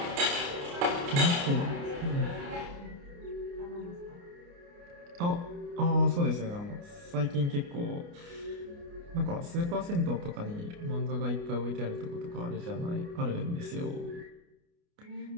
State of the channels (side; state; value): left; late; 29 ms